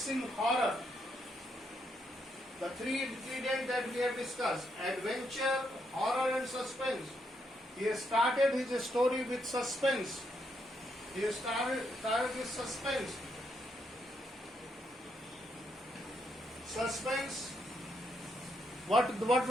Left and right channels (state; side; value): normal; both; correlation 0.78